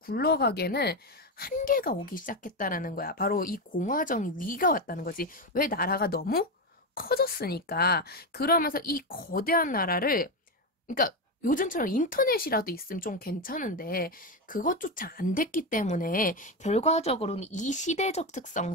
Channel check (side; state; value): both; normal; correlation 0.12